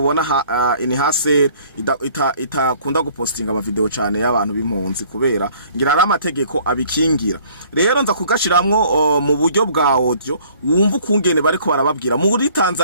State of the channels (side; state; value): both; inverted; correlation -0.56